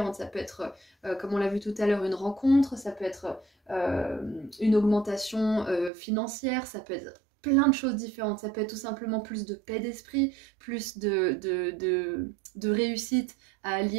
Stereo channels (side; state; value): left; drops out; at 5.9 s